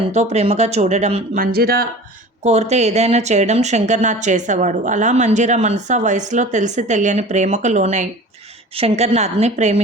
ప్రేమగా చూడడం, మంజీరా కోరితే ఏదైనా చేయడం శంకర్నాథ్ చేసేవాడు. అలా మంజీరా మనసు ఆ వయసులో తెలిసి తెలియని ప్రేమకు లోనై శంకర్నాథ్ని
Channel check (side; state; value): both; normal; correlation 0.40